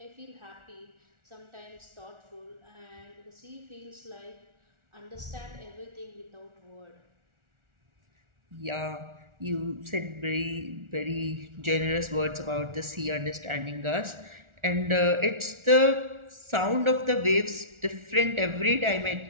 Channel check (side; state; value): left; late; 1.4 ms